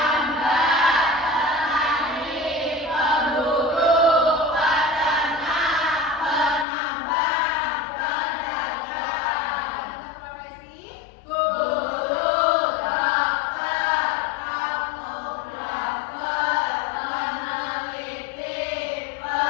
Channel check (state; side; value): drops out; right; at 6.7 s